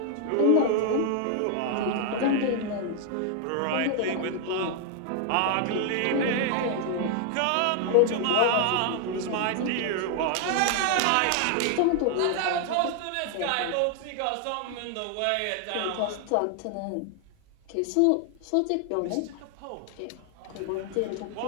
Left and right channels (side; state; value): both; different; correlation 0.00